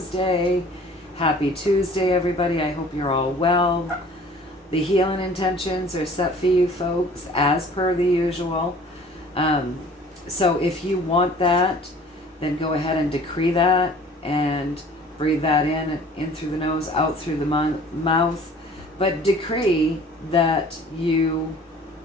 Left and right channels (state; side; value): normal; both; correlation 0.49